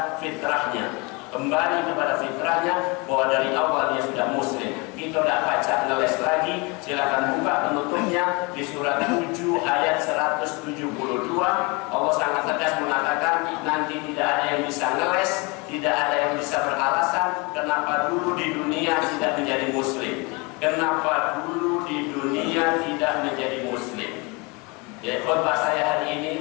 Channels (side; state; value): right; quieter; 28.3 dB